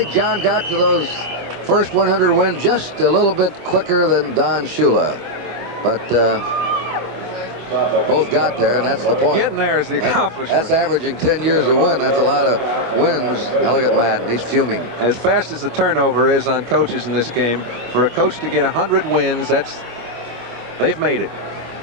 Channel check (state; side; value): late; left; 25 ms